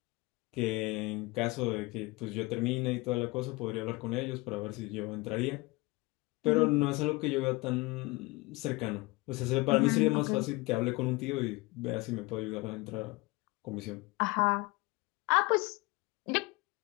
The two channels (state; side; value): quieter; right; 23.2 dB